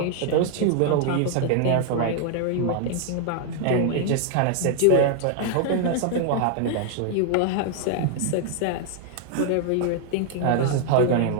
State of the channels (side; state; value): both; different; correlation 0.00